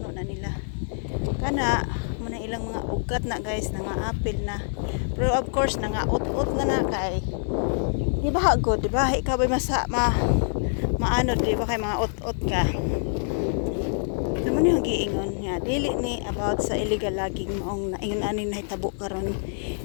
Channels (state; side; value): silent; right; 61 dB below the other